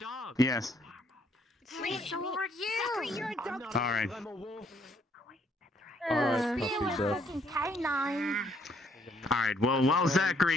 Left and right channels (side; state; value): both; normal; correlation 0.68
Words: Yes. Sword, you! You're a dog. All right. I'm a wolf. Alright, You puppy a breath. fucking canine. All right. Well, while